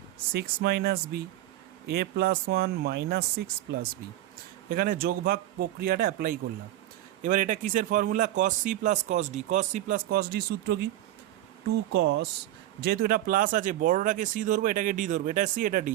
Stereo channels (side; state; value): left; quieter; 14.1 dB